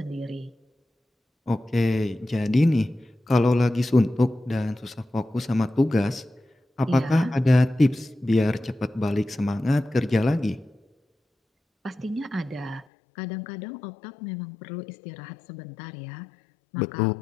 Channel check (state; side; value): drops out; right; at 12.9 s